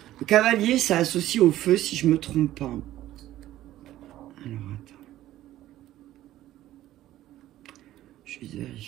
Le cavalier, ça associe au feu, si je me trompe pas. Alors, attends. Je vais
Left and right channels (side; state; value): left; quieter; 14.1 dB